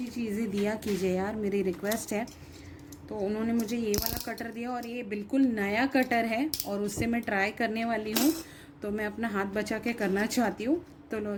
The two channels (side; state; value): both; identical; correlation 1.00